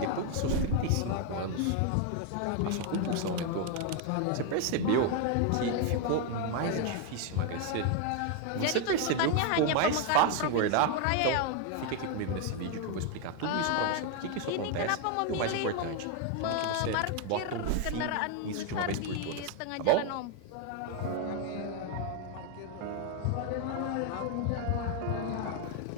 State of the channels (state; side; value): different; both; correlation 0.01